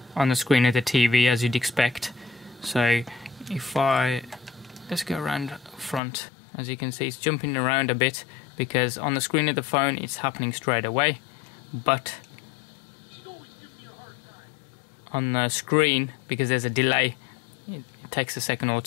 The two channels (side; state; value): right; drops out; at 6.0 s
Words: on the screen of the TV, as you'd expect. So if let's go around front, as you can see it's jumping around a bit, because on the screen of the phone it's happening straight away, but on the screen, because there's a delay, it takes a second or